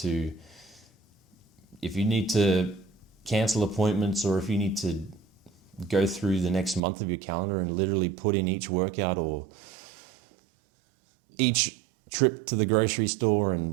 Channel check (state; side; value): drops out; left; at 6.8 s